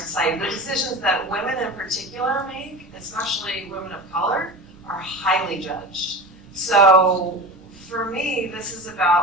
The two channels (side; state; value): both; normal; correlation 0.30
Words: The decisions that women in particular make, especially women of color, are highly judged. So for me, this is